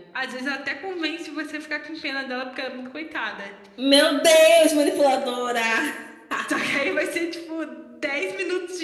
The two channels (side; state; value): both; identical; correlation 1.00